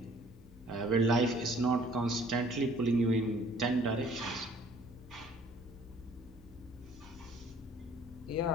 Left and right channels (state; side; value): normal; both; correlation 0.56